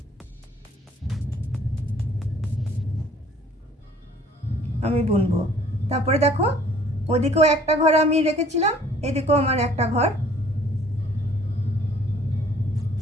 আমি বুনবো। তারপরে দেখো ওদিকেও একটা ঘর আমি রেখেছিলাম, এদিকেও আমার একটা ঘর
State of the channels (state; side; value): normal; both; correlation 0.55